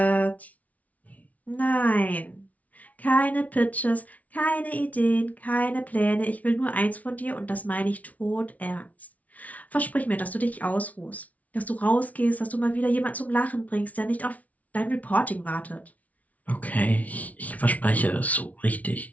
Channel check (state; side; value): late; right; 0.070 ms